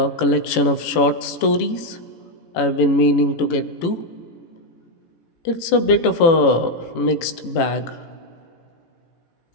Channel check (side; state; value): right; late; 18 ms